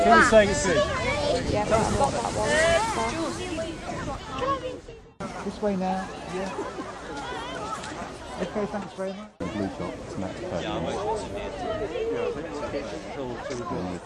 Can you say it's good? Yeah, I've got that one. This way now, yeah. Okay, thanks very much. Blue top, snack pack.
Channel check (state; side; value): identical; both; correlation 1.00